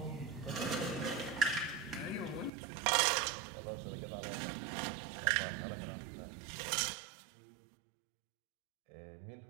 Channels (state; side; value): drops out; left; at 2.5 s